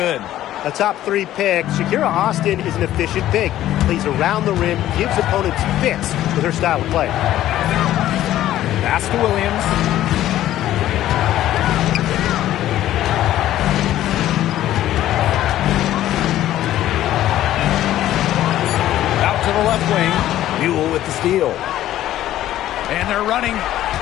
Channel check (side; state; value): right; quieter; 13.3 dB